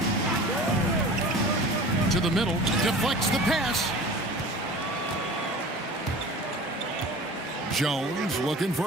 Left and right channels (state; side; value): normal; both; correlation 0.40